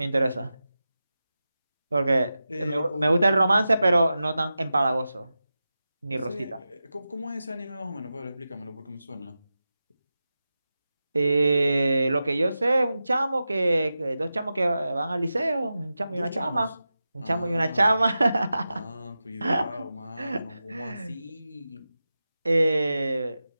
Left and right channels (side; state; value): both; inverted; correlation -0.93